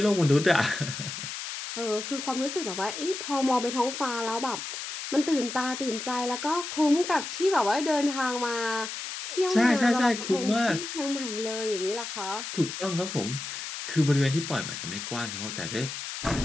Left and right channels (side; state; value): left; noise; hiss, 7 dB below the sound